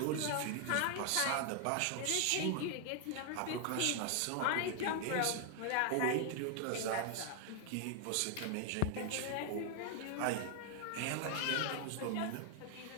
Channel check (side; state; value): both; different; correlation 0.00